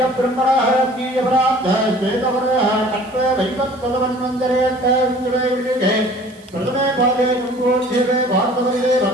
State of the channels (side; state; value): right; noise; hiss, 27 dB below the sound